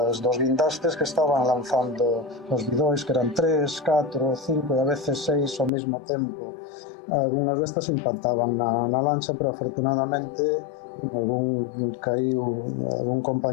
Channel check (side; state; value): right; drops out; at 5.7 s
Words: guindastes que estaban lanzando os bidóis, que eran 3, 4, 5 e a veces 6 ao mesmo tempo. Algunhas destas impactaban na lancha, pero afortunadamente algún